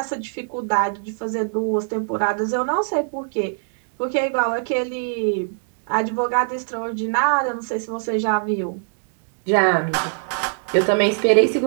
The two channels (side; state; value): left; silent; digital silence